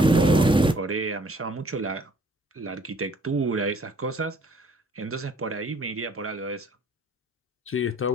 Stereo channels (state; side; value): normal; both; correlation 0.59